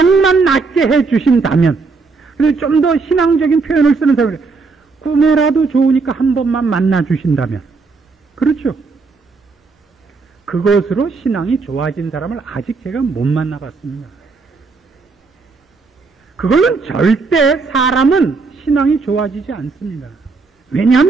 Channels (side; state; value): left; quieter; 4.3 dB